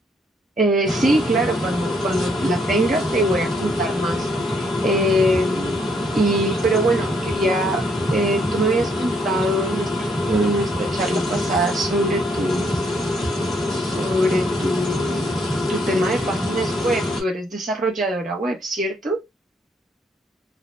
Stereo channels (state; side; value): normal; both; correlation 0.71